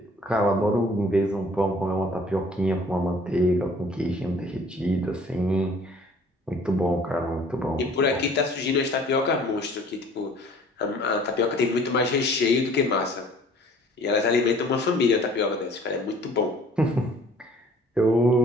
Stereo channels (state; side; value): normal; both; correlation 0.53